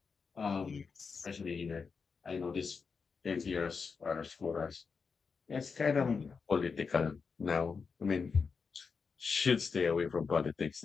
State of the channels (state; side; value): quieter; right; 5.3 dB